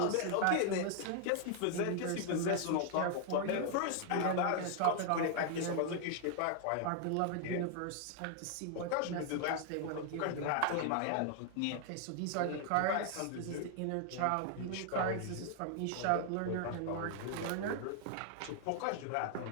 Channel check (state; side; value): different; both; correlation 0.00